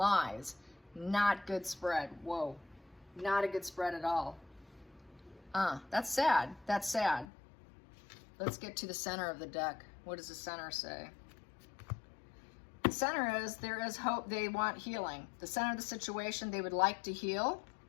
Not good spread. Whoa. Not a good spread at all. That's sad. That's sad. Let's get to the center of the deck. What does the center say? The center is, there is hope. They want healing. The center of the situation, they would like to heal,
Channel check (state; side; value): drops out; right; at 7.2 s